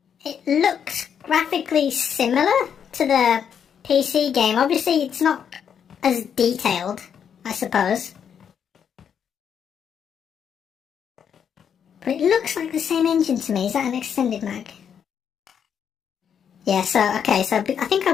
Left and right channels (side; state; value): right; quieter; 7.9 dB